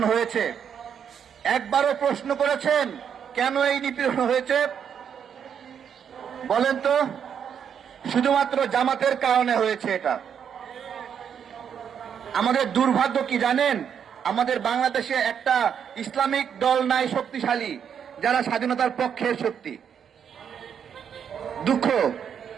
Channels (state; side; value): quieter; left; 7.9 dB